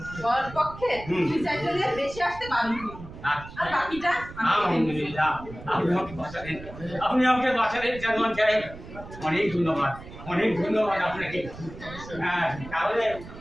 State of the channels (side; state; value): right; noise; rumble, 15 dB below the sound